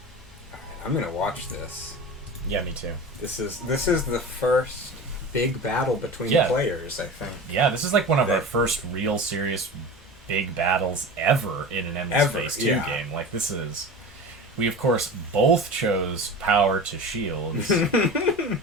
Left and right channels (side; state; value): both; normal; correlation 0.32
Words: I'm gonna watch this. Yeah, me too. This is the first big battle between players, I think. Yeah, this is like one of our first real serious big battles ever in an Endless Space 2 game. Like this is we of course both chose power to shield. Gonna